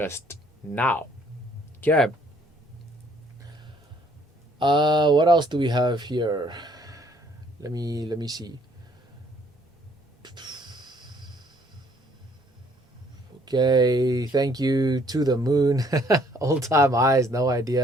now. Okay. What else do we have here? Let me see. Okay, thank you to the moon. Old time highs, no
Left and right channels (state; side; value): normal; both; correlation 0.63